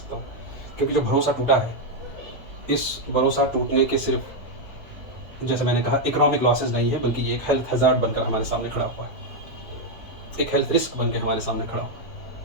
हूँ। क्योंकि जो भरोसा टूटा है, इस भरोसा टूटने के सिर्फ, जैसे मैंने कहा, इकोनॉमिक लॉसेस नहीं है, बल्कि ये एक हेल्थ हज़ार्ड बनकर हमारे सामने खड़ा हुआ है, एक हेल्थ रिस्क बन के हमारे सामने खड़ा हुआ है।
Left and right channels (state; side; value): normal; both; correlation 0.01